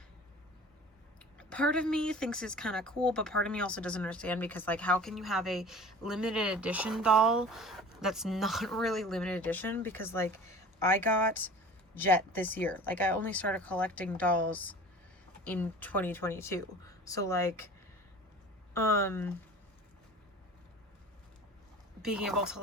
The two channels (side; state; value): both; normal; correlation 0.41